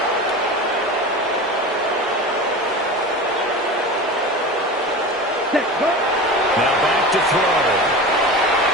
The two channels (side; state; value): both; normal; correlation 0.30